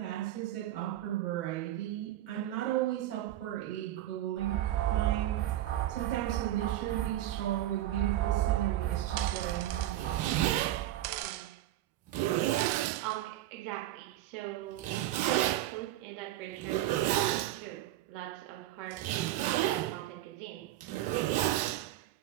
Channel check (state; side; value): quieter; left; 13.9 dB